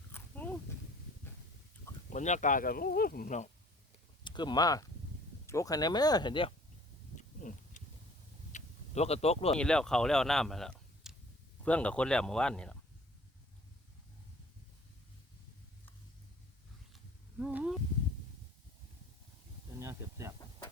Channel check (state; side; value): normal; both; correlation 0.53